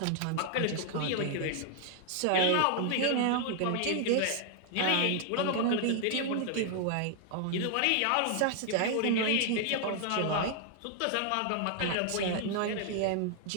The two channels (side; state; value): both; different; correlation 0.00